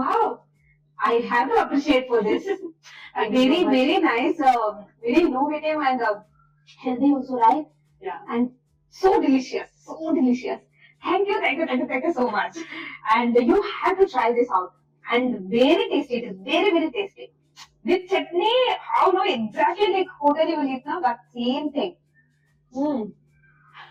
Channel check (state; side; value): identical; both; correlation 1.00